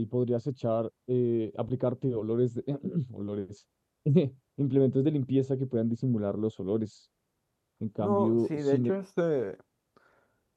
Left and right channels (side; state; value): both; identical; correlation 1.00